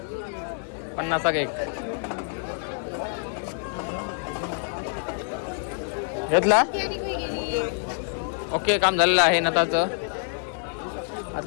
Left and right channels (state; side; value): silent; right; 61 dB below the other